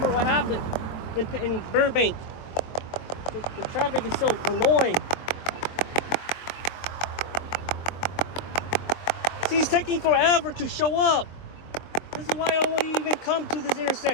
what happened in Burbank. The traffic is so annoying. See, it's taking forever to show up. This is why I don't even come to this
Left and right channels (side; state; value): right; late; 23 ms